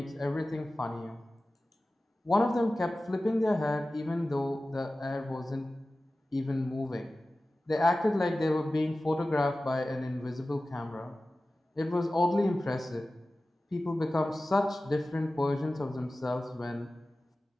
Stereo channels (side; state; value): both; normal; correlation 0.96